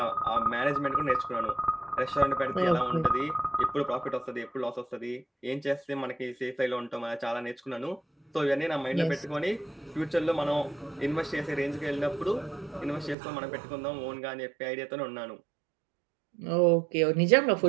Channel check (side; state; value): left; drops out; at 13.2 s